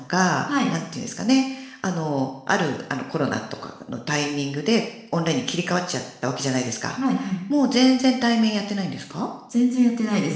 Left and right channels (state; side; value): identical; both; correlation 1.00